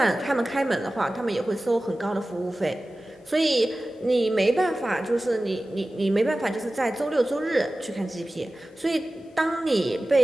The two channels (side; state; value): both; normal; correlation 0.96